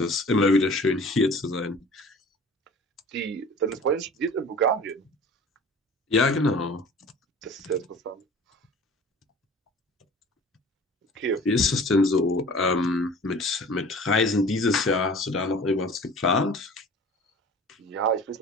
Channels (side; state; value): both; normal; correlation 0.44